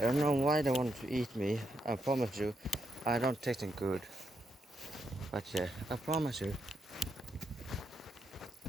don't know why they want to eat me. I promise you, I don't taste them good. But yeah, I promise you.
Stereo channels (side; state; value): both; normal; correlation 0.80